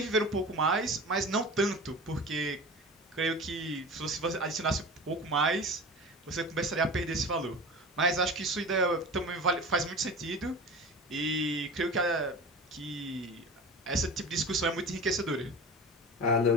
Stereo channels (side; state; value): both; normal; correlation 0.34